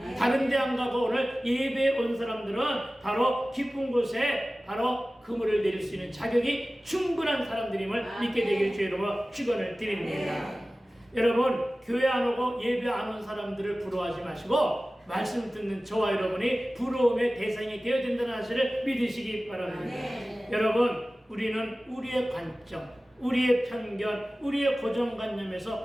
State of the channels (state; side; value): normal; both; correlation 0.96